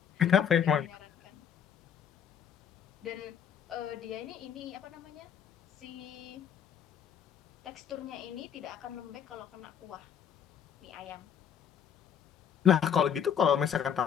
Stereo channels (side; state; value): right; quieter; 8.5 dB